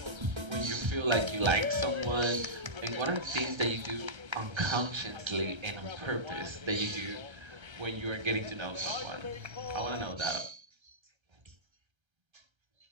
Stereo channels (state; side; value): late; left; 1.3 ms